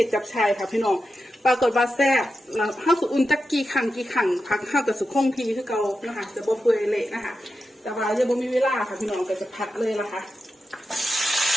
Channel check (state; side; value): normal; both; correlation 0.89